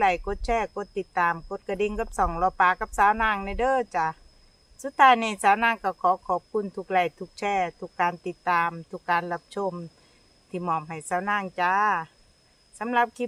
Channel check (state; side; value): identical; both; correlation 1.00